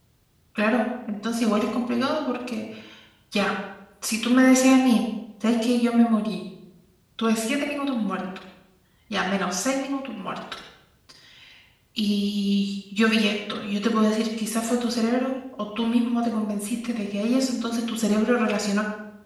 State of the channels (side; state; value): both; identical; correlation 1.00